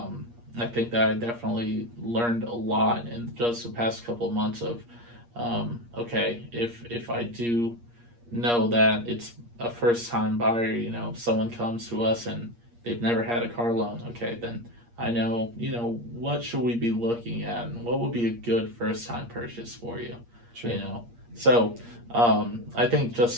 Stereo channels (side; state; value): left; late; 8.5 ms